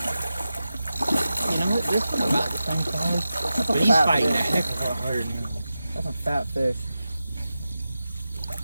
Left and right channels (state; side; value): inverted; both; correlation -0.92